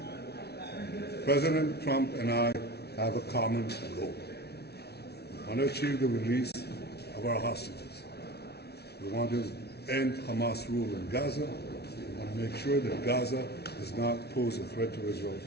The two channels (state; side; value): late; right; 0.48 ms